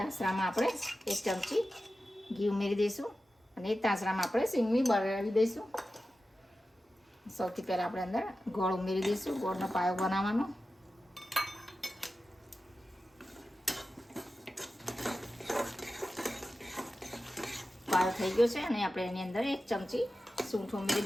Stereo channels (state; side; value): normal; both; correlation 0.93